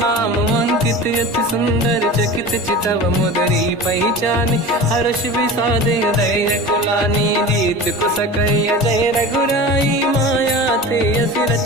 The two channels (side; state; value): both; normal; correlation 0.33